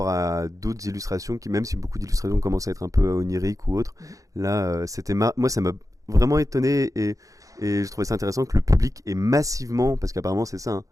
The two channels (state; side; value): late; left; 0.16 ms